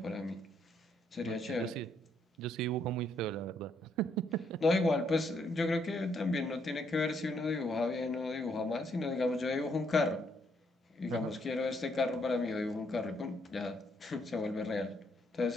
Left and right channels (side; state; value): both; normal; correlation 0.72